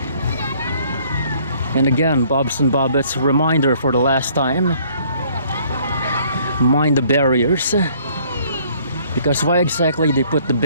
And again, Bobs and Bobbets, reminder for the last time, mind the barriers. Because why exactly they put the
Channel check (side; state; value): both; inverted; correlation -0.60